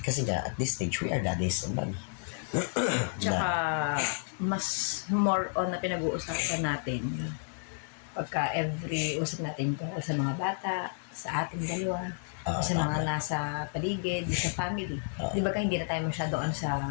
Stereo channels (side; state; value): right; silent; digital silence